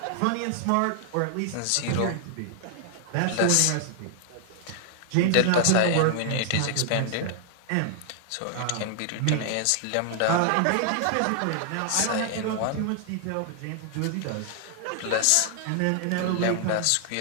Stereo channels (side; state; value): both; different; correlation 0.00